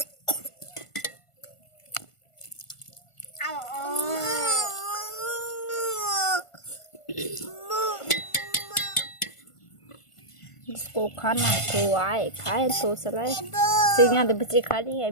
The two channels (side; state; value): right; late; 1.5 ms